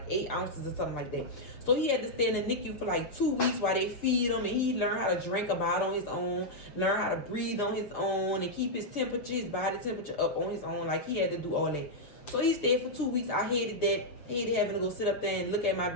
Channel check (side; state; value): right; late; 6.7 ms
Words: 8 ounces or something like that. So he had to stay in the NICU for like 2 weeks while they feed him, and he learned how to drink about on his own, learn how to breathe on his own, and keep his temperature, his body temperature up on his own. Like he had to do all that. So he stayed for 2 weeks. I hated that. Hated having to go sit up there and look at my